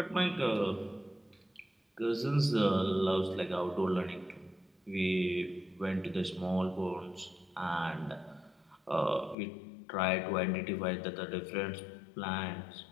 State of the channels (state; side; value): drops out; right; at 9.3 s